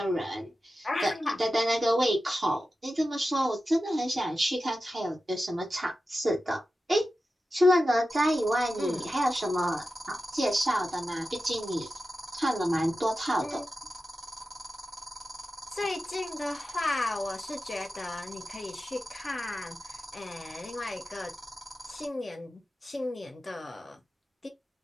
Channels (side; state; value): both; normal; correlation 0.92